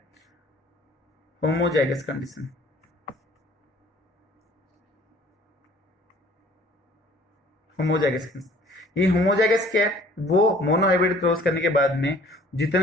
होमोजाइगस कंडीशन, होमोजाइगस कंडीशन, ये होमोजाइगस क्या है, वो मोनोहाइब्रिड क्रॉस करने के बाद में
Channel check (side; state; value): both; normal; correlation 0.53